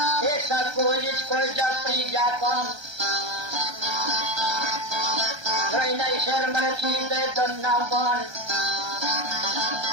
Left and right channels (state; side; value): late; left; 1.3 ms